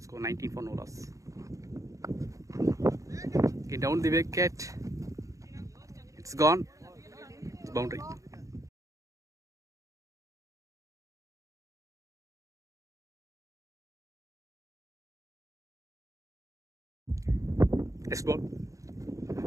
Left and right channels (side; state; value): left; late; 0.16 ms